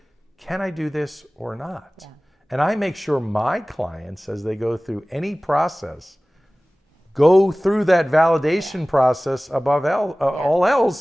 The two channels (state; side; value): normal; both; correlation 0.98